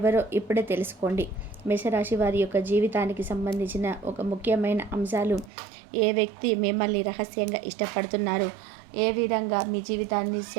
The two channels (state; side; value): drops out; left; at 5.5 s